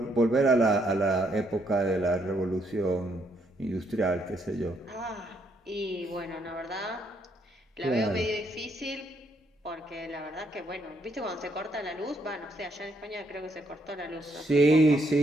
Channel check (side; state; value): both; normal; correlation 0.73